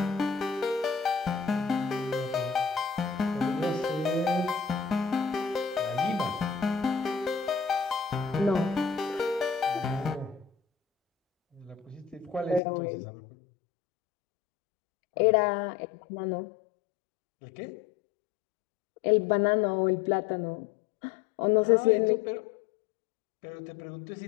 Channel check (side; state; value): right; drops out; at 12.6 s